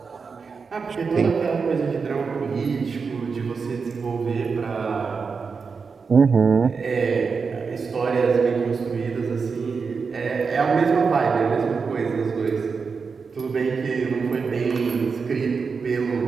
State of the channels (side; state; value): left; quieter; 5.2 dB